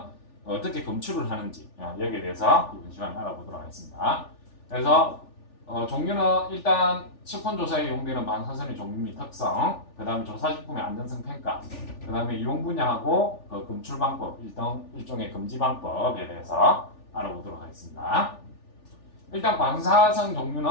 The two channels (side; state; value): right; late; 3.4 ms